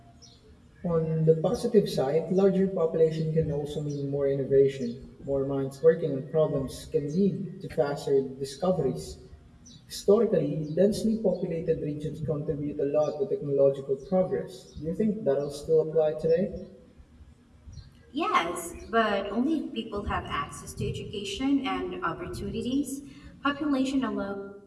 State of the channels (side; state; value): both; identical; correlation 1.00